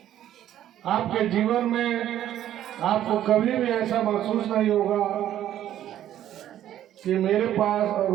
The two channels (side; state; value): left; quieter; 11.8 dB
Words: आपके जीवन में आपको कभी भी ऐसा महसूस नहीं होगा कि मेरे पास और